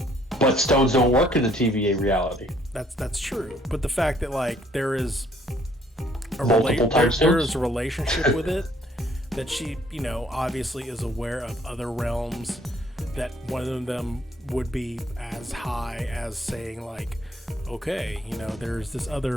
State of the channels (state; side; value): normal; both; correlation 0.63